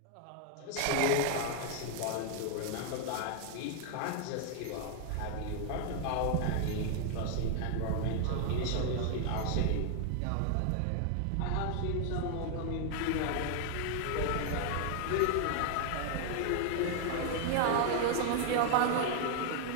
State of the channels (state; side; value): different; both; correlation 0.00